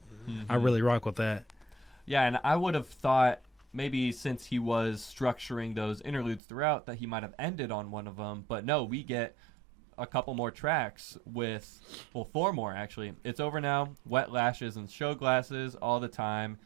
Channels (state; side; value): drops out; left; at 6.4 s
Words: I really rock with that. Yeah, and I would have thought maybe since he was structuring those interludes throughout that he might have ended on one of them, but no, we get a couple more tracks with, 4 more actually. It's Over Now, Wet Lashes and Show Glasses, All the Time,